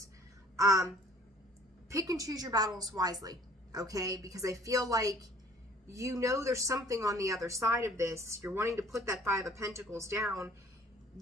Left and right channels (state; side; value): normal; both; correlation 0.53